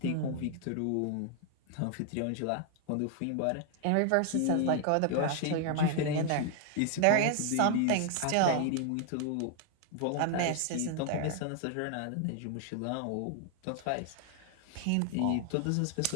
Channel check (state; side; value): different; both; correlation 0.00